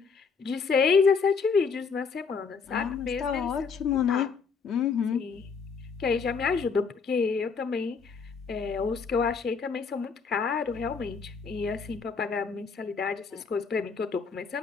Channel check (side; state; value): right; quieter; 5.4 dB